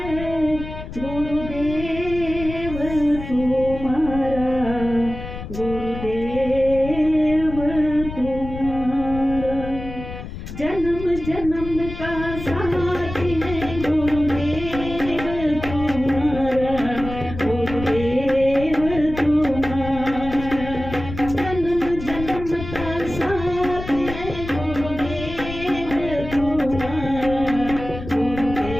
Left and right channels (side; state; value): left; noise; rumble, 10 dB below the sound